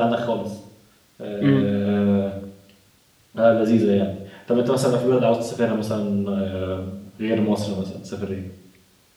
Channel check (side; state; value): both; identical; correlation 1.00